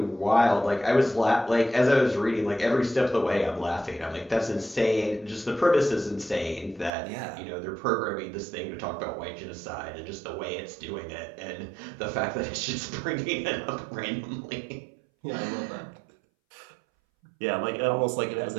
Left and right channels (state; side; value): drops out; left; at 6.9 s